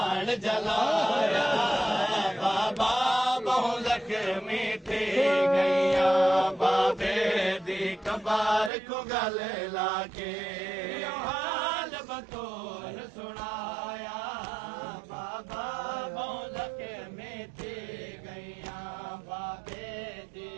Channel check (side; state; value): left; drops out; at 8.7 s